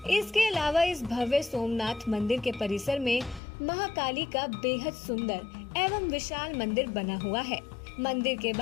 इसके अलावा इस भव्य सोमनाथ मंदिर के परिसर में महाकाली का बेहद सुंदर एवं विशाल मंदिर बना हुआ है। मंदिर के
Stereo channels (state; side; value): drops out; right; at 3.4 s